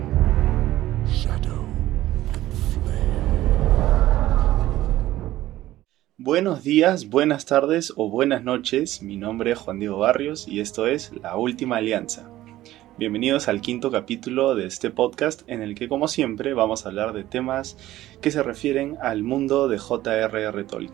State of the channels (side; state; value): left; quieter; 15.1 dB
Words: Shadow and flame. Buenos días, buenas tardes o buenas noches. Mi nombre es Juan Diego Barrios y esto es La Última Alianza. Bienvenidos al quinto capítulo de este podcast en el que, como siempre, vamos a hablar de temas que se refieren al mundo de J.R.R.